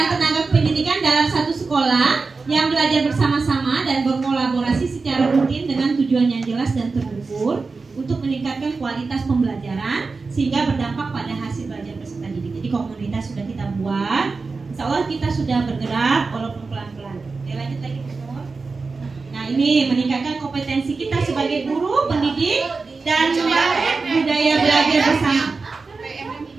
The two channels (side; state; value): left; quieter; 4.2 dB